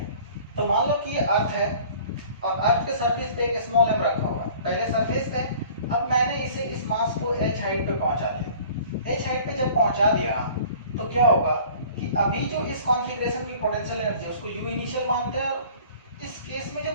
तो मान लो कि ये अर्थ है और अर्थ के सरफेस पे एक स्मॉल m रखा हुआ है, पहले सरफेस पे। अब मैंने इसे इस मास को h हाइट पे पहुंचा दिया। h हाइट पे जब पहुंचा दिया तो क्या होगा कि अभी जो इस कॉन्फ़िगरेशन की पोटेंशियल एनर्जी उसको u इनिशियल मानते हैं, और इस केस में जो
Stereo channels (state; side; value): inverted; both; correlation -0.48